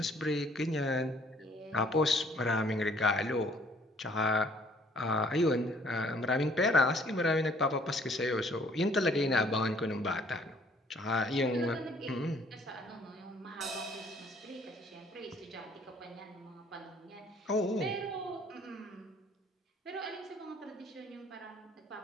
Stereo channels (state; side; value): normal; both; correlation 0.60